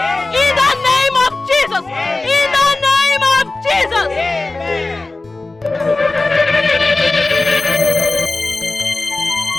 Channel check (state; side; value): quieter; right; 3.2 dB